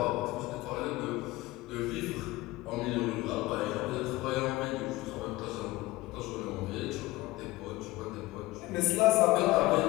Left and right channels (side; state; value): right; quieter; 19.1 dB